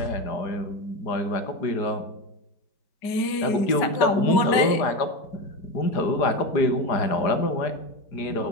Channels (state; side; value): late; right; 5.2 ms